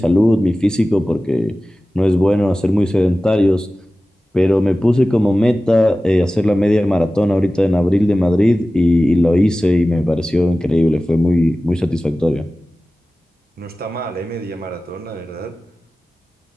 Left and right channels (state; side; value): normal; both; correlation 0.96